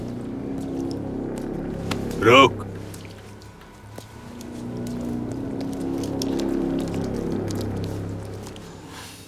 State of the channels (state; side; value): identical; both; correlation 1.00